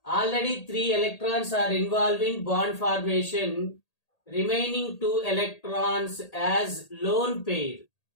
Already 3 electrons are involved in bond formation. Remaining 2 electrons as lone pair.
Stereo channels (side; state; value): right; late; 1.8 ms